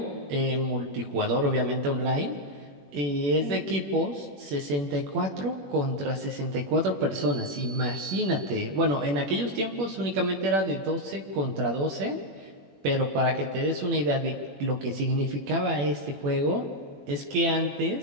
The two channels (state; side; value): late; left; 21 ms